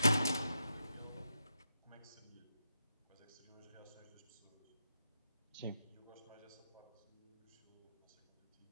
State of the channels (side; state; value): both; inverted; correlation -0.85